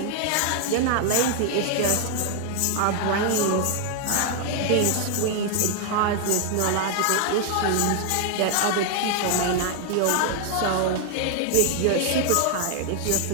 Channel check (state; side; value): different; both; correlation 0.00